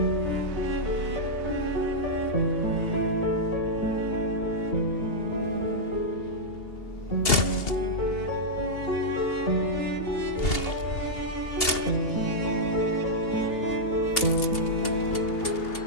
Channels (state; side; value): late; right; 2.8 ms